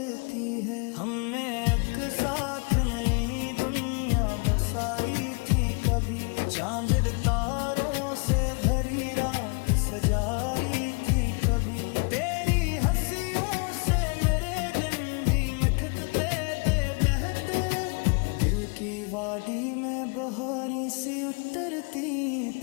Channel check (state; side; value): quieter; right; 33.5 dB